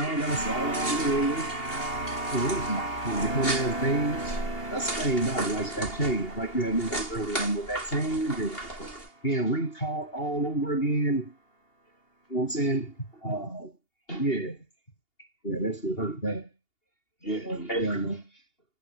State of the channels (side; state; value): right; late; 2.8 ms